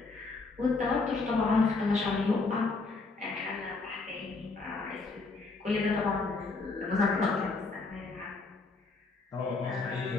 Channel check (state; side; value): quieter; right; 3.8 dB